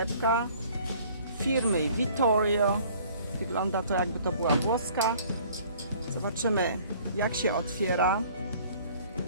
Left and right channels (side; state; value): both; inverted; correlation -0.54